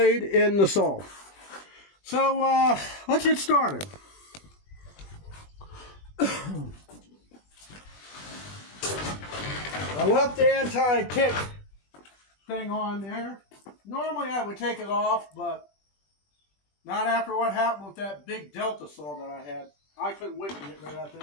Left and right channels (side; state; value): right; late; 20 ms